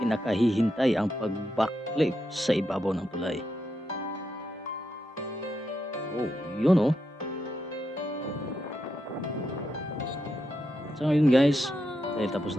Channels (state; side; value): normal; both; correlation 0.84